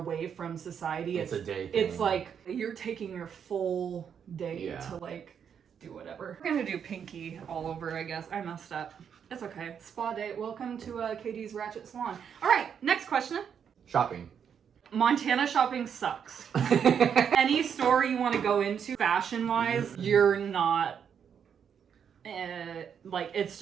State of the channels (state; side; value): quieter; left; 7.7 dB